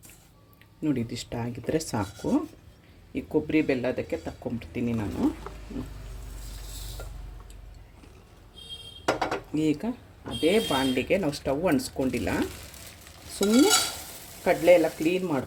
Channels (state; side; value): identical; both; correlation 1.00